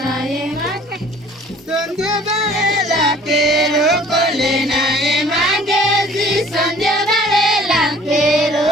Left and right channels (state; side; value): normal; both; correlation 0.52